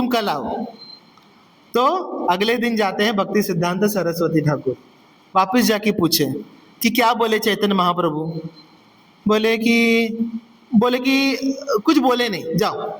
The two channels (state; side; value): identical; both; correlation 1.00